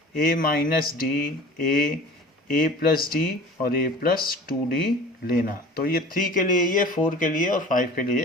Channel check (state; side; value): normal; both; correlation 0.42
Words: A minus D, A plus D और A प्लस 2D लेना। तो ये 3 के लिए, ये 4 के लिए और 5 के लिए,